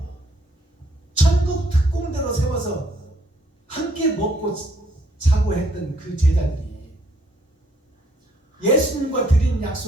천국 특공대로 세워서 함께 먹고 자고 했던 그 제자들이 예수님과 드린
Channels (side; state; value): both; normal; correlation 0.67